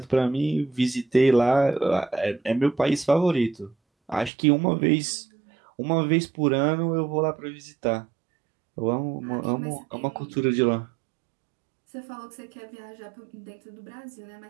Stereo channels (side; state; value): left; drops out; at 4.3 s